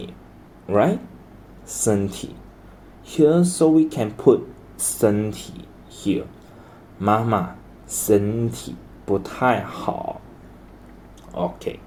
right? 身体 here, so we can put 身体 here. 妈妈身体不太好 Okay,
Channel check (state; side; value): identical; both; correlation 1.00